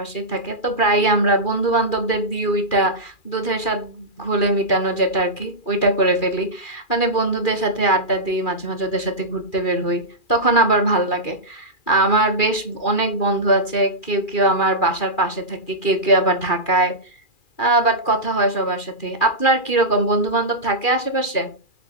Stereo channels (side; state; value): right; late; 2.4 ms